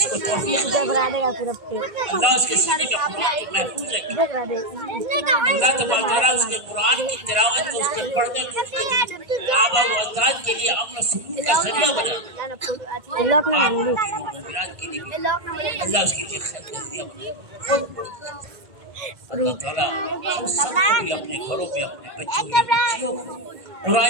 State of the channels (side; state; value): left; late; 1.5 ms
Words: तौफीक अल्लाह उसके सीने में कुरान को महफूज रखे। अल्लाह तबारक व तआला उसके कुरान की तिलावत को, उसके पढ़ने को, उसके आबा व अजदाद के लिए अमन और सुकून का जरिया बना। अल्लाह उसके लिए खैर का जरिया बना। अल्लाह ताला हम सबको भी अपने घरों में अपने बच्चों या बच्चियों को